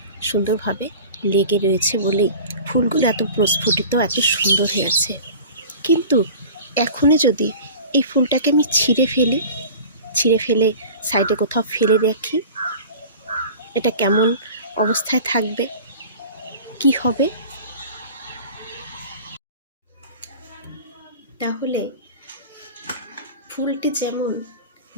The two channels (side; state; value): both; inverted; correlation -0.39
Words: সুন্দরভাবে লেগে রয়েছে বলেই ফুলগুলো এত প্রস্ফুটিত, এত সুন্দর হয়ে আছে। কিন্তু এখনই যদি এই ফুলটাকে আমি ছিঁড়ে ফেলে সাইডে কোথাও ফেলে রাখি, এটা কেমন অবস্থায় থাকবে, কি হবে? তাহলে ফুলটি যেমন